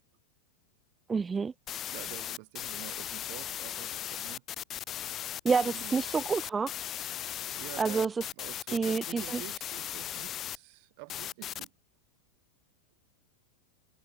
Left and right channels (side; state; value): both; normal; correlation 0.77